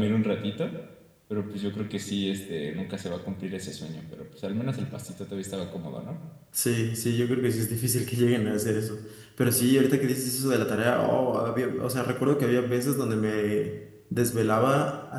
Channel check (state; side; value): identical; both; correlation 1.00